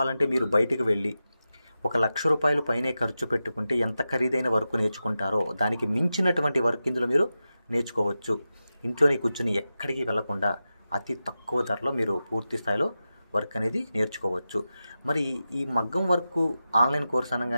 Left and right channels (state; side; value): inverted; both; correlation -0.92